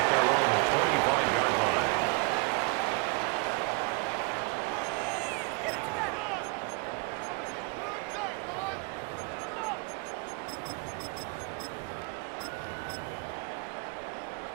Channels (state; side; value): quieter; left; 29.8 dB